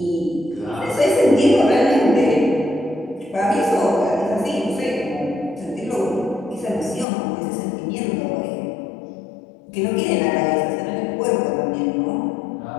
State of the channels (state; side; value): drops out; right; at 7.1 s